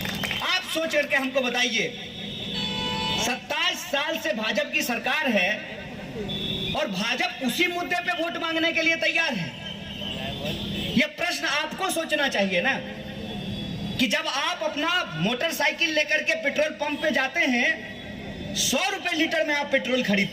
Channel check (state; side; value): identical; both; correlation 1.00